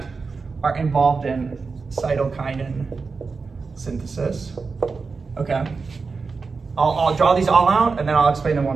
are involved in cytokinin synthesis. Okay, I'll draw these all out and then I'll explain them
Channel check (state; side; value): quieter; left; 4.6 dB